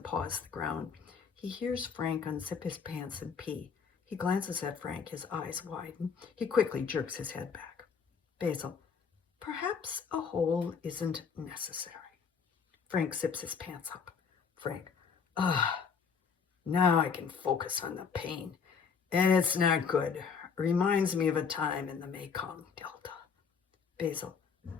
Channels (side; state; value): right; quieter; 6.1 dB